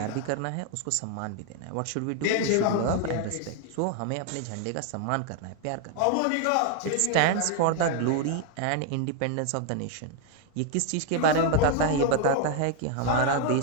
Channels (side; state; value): both; different; correlation 0.00